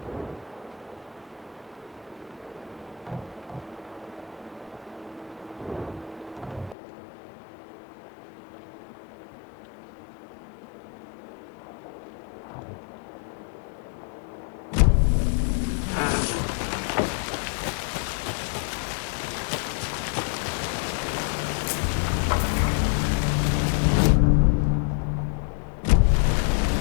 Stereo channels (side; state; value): right; drops out; at 6.8 s